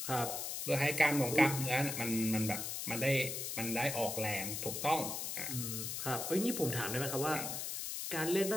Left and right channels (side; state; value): left; noise; hiss, 4 dB below the sound